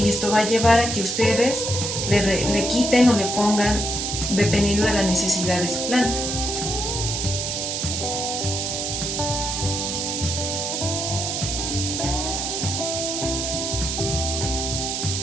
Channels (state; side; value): noise; right; hiss, 2 dB below the sound